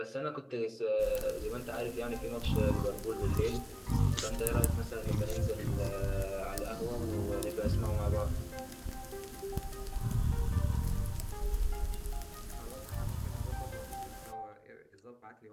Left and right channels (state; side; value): identical; both; correlation 1.00